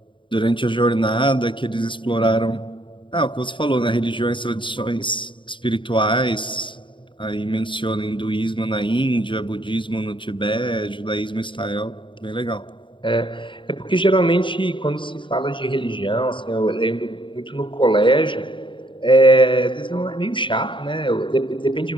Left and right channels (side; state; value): right; late; 0.24 ms